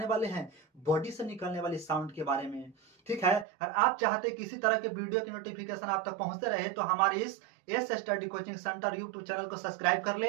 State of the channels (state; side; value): drops out; left; at 3.5 s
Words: वाले हैं बॉडी से निकलने वाली साउंड के बारे में, ठीक है। और आप चाहते किसी तरह के वीडियो की नोटिफिकेशन आप तक पहुंचते रहे तो हमारे इस S study coaching centre YouTube channel को सब्सक्राइब कर